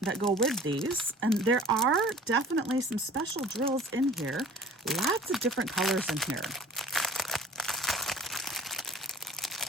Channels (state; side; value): normal; both; correlation 0.47